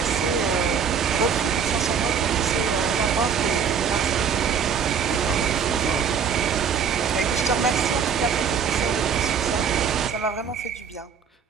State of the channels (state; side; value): quieter; left; 6.8 dB